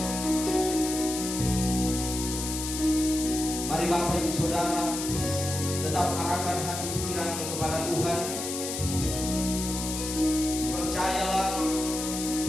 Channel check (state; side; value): noise; left; hiss, 5 dB below the sound